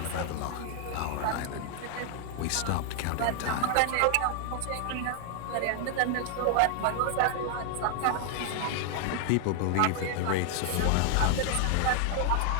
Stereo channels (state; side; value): different; both; correlation 0.00